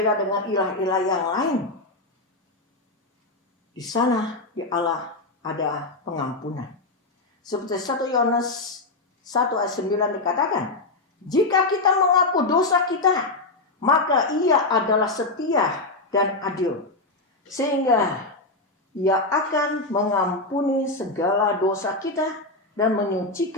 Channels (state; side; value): quieter; right; 3.2 dB